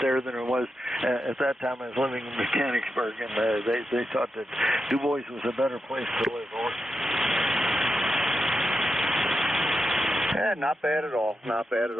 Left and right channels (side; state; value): both; normal; correlation 0.87